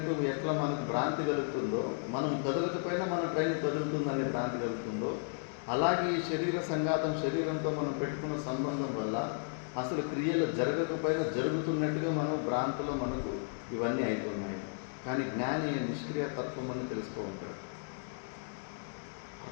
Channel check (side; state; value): right; silent; digital silence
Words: ఎట్లా మనకు భ్రాంతి కలుగుతుందో, మనం కదలకపోయినా మన ట్రైన్ కదులుతుందని భ్రాంతి కలుగుతుందో, అలాగే ఈ శరీర సంఘాతం, శరీరంతో మనం పెట్టుకున్న సంబంధం వల్ల అసలు క్రియలు జరగకపోయినా జరుగుతున్నట్టుగా మనం భ్రాంతిలో మనకు ఇవన్నీ అవుతున్నాయి. కానీ జ్ఞాని నిష్క్రియ తత్వం అని తెలుసుకుంటాడు.